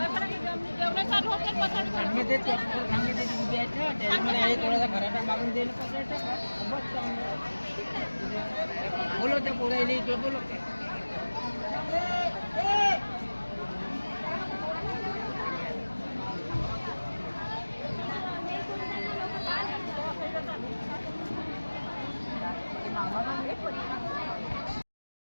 जेवढे चालू होते पचाड थोडासा खराटा मागून देईल. बोलो त्या पोरायली ते बोलो.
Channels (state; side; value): inverted; both; correlation -1.00